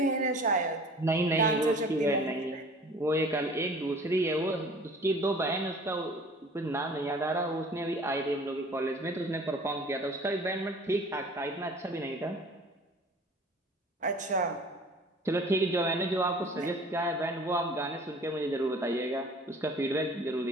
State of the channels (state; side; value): normal; both; correlation 0.47